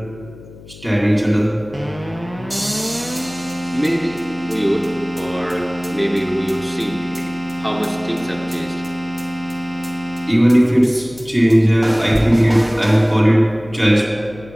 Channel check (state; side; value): noise; left; hum, 19 dB below the sound